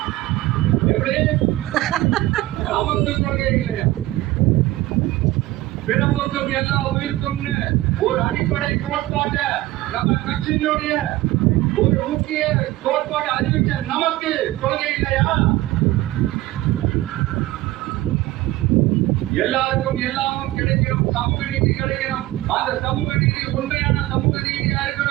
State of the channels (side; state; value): left; quieter; 17.0 dB